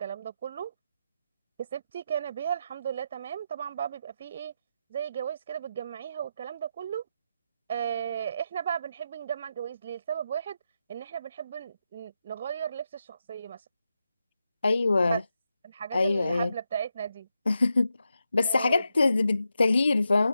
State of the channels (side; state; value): both; inverted; correlation -0.86